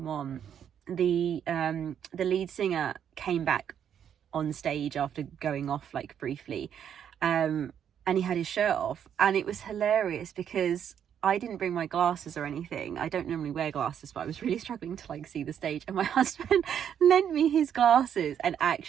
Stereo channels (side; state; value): left; quieter; 8.9 dB